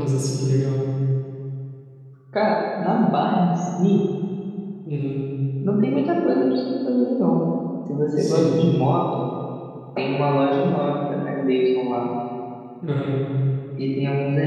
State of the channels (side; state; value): both; identical; correlation 1.00